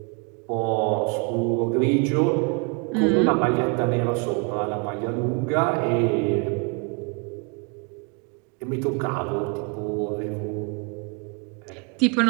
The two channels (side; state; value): left; quieter; 33.4 dB